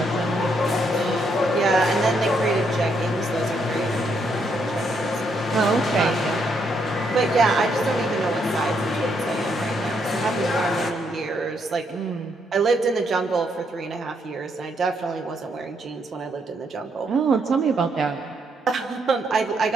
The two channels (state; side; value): normal; both; correlation 0.75